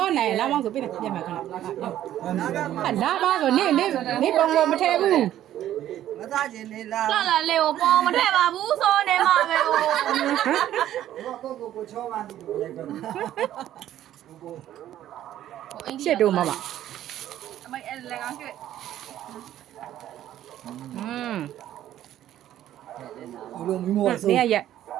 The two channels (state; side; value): quieter; left; 12.3 dB